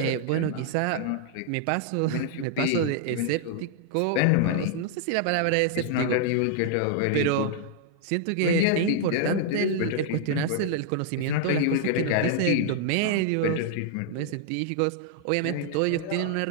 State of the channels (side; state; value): both; different; correlation -0.01